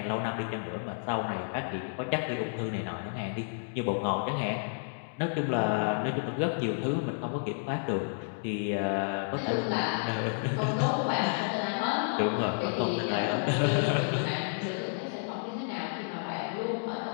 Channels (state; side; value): silent; right; digital silence